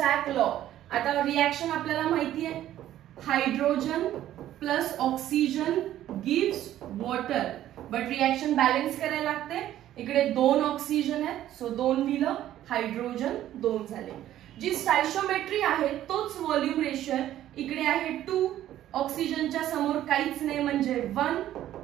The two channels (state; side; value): quieter; left; 12.7 dB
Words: law. आता रिएक्शन आपल्याला माहिती आहे, hydrogen plus oxygen gives water, but reaction balance करायला लागते. इकडे 2 ऑक्सिजन आहे, सो 2 दिलं, हायड्रोजन 2 झाले. जी स्टायशोमेट्री आहे तोच व्हॉल्यूम रेशिओ आहे. इकडे आहे 2, ऑक्सिजनच्या समोर काहीच नाही म्हणजे 1